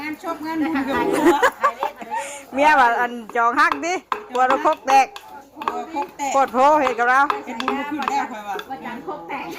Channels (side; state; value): both; identical; correlation 1.00